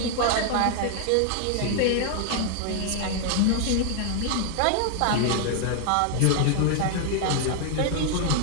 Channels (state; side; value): different; both; correlation 0.00